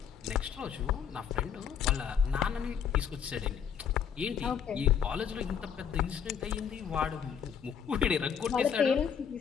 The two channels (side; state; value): right; quieter; 7.8 dB